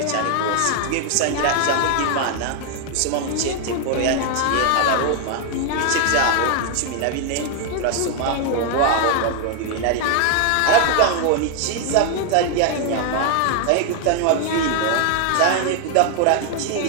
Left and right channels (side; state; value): both; different; correlation 0.00